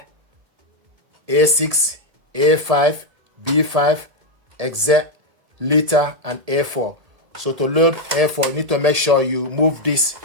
A6, A5, B5, XZ, liter, and A4. So to load A4, you need to make sure you move this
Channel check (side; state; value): left; late; 1.7 ms